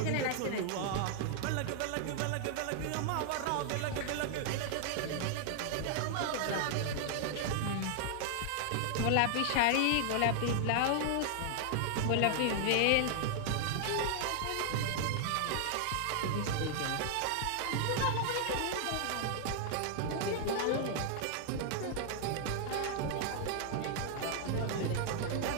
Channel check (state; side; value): different; both; correlation 0.00